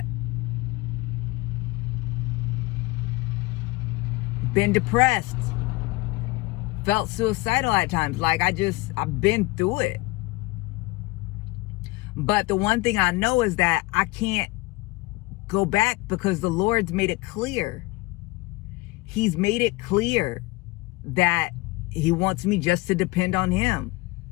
Been depressed. Felt suicidal at times. Like, I've been through it. But the one thing I know is that I can't go back, because the Lord's made it clear. He's made it clear that he wants me just to depend on him.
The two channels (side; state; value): right; quieter; 22.3 dB